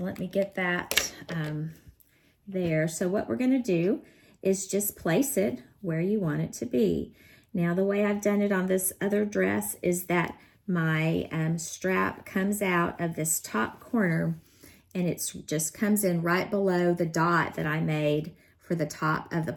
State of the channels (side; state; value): both; identical; correlation 1.00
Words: let me get that there. So what we're going to do is just place it where you want it to be. Now the way I've done it on this other dress is that my strap comes out of this top corner, and it's just comes in right below the dot that I made for the top of the